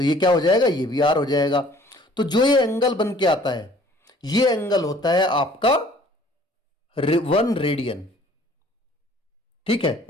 ये क्या हो जाएगा, ये भी आर हो जाएगा। तो जो ये एंगल बन के आता है, ये एंगल होता है आपका 1 रेडियन। ठीक है,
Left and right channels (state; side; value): normal; both; correlation 0.54